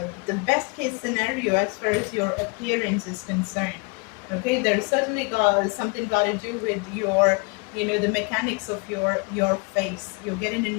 the best case scenario as far as your appearance is concerned. Okay, there's certainly got to do with your, the mechanics of your face. You're getting a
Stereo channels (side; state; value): right; quieter; 31.2 dB